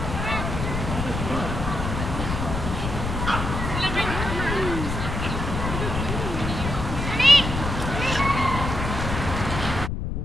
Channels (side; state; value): left; noise; rumble, 3 dB below the sound